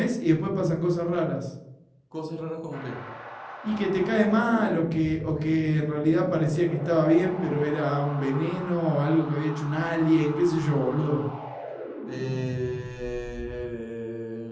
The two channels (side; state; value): both; identical; correlation 1.00